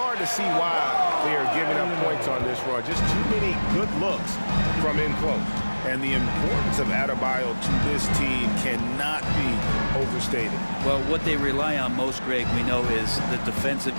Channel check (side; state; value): both; inverted; correlation -1.00